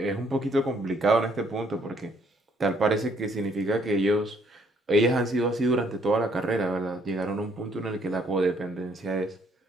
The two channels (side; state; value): both; normal; correlation 0.66